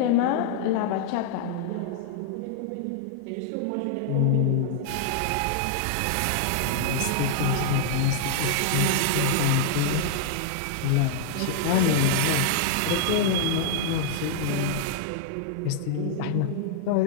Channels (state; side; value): different; both; correlation -0.01